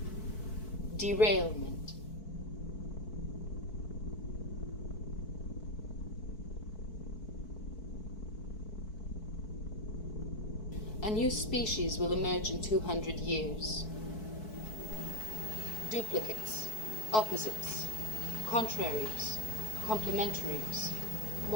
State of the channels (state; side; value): late; right; 4.6 ms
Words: Derailment. A new species will emerge in 200 years. Duplicates, opposites, contraries, complementaries,